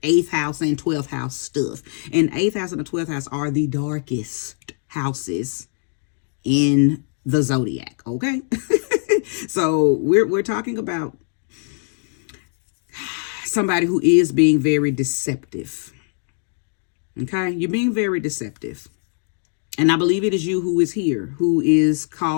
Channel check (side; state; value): right; silent; 55 dB below the other